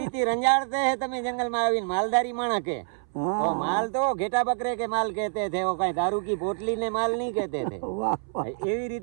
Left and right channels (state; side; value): silent; left; 60 dB below the other